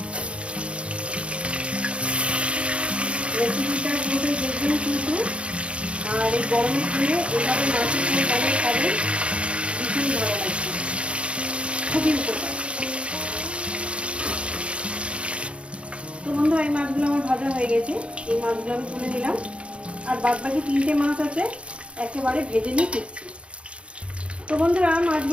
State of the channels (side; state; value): left; late; 0.059 ms